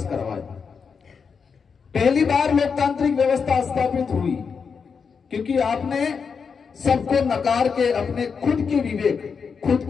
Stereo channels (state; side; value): quieter; right; 5.8 dB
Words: करवाया। पहली बार लोकतांत्रिक व्यवस्था स्थापित हुई क्योंकि आपने सबको नकार के अपने खुद के विवेक, खुद